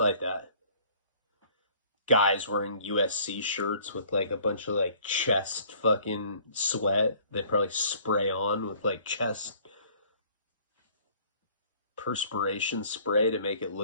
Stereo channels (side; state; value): both; inverted; correlation -0.55